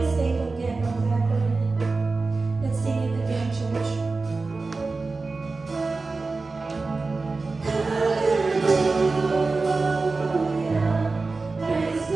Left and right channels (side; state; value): left; quieter; 3.8 dB